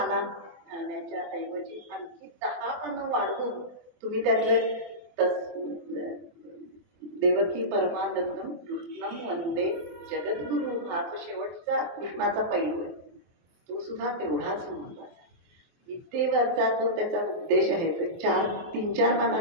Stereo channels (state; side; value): late; left; 24 ms